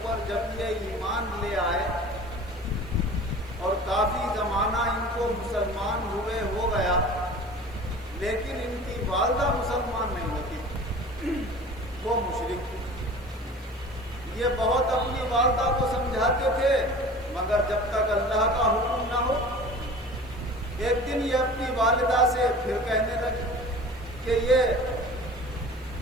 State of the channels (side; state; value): right; noise; hiss, 29 dB below the sound